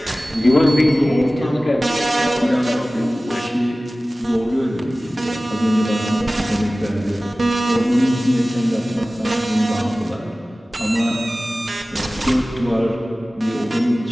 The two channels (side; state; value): both; normal; correlation 0.97